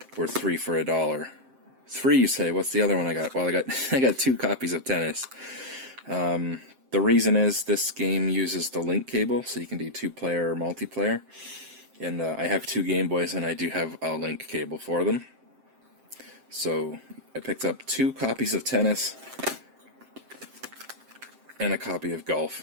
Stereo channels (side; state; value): left; late; 7.6 ms